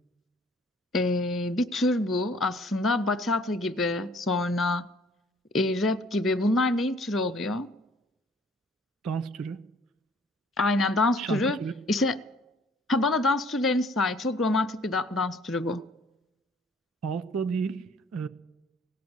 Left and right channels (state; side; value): normal; both; correlation 0.57